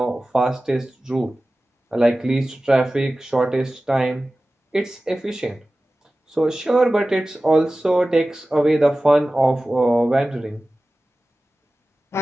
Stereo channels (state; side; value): normal; both; correlation 0.96